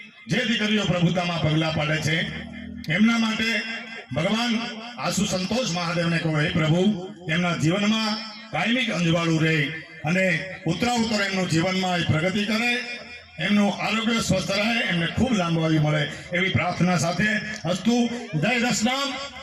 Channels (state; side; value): identical; both; correlation 1.00